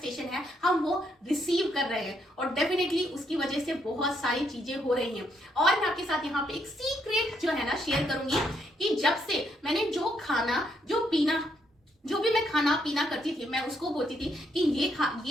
है, हम वो रिसीव कर रहे हैं और डेफिनेटली उसकी वजह से बहुत सारी चीजें हो रही हैं। और मैं आपके साथ यहाँ पे एक सीक्रेट जो है ना शेयर करूंगी कि जब से मैंने जो भी मैं खाना पीना करती थी, मैं उसको बोलती थी कि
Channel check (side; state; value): both; normal; correlation 0.75